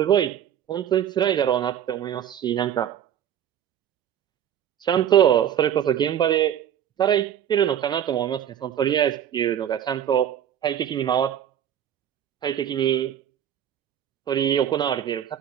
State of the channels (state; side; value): quieter; left; 9.9 dB